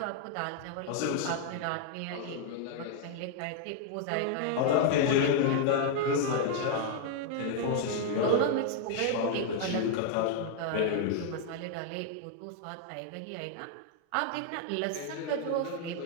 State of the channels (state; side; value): different; both; correlation 0.00